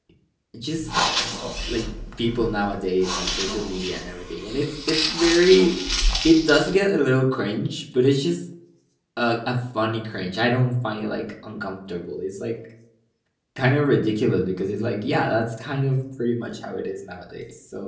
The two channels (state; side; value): identical; both; correlation 1.00